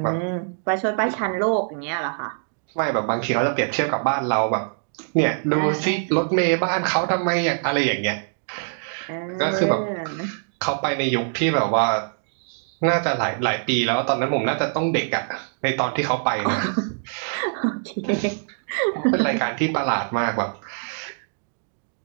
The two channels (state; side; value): silent; left; digital silence